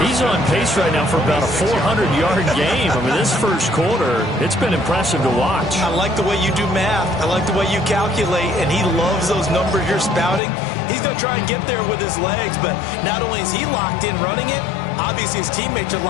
He's on pace right now for about a 400-yard game. I mean, this first quarter, it's been impressive to watch. I like the way you do math. I like the way you calculate, and he loves those numbers you're spouting. He's going to try and get there with his legs, but not only is he locked in running it, obviously his teammates are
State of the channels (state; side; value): drops out; right; at 10.4 s